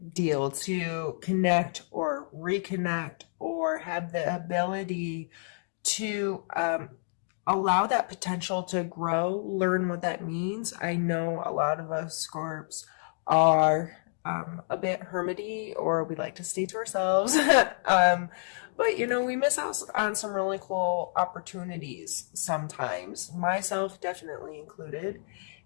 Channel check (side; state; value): right; silent; digital silence